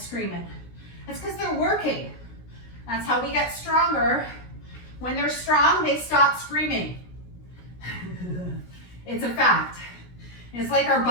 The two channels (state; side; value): late; right; 17 ms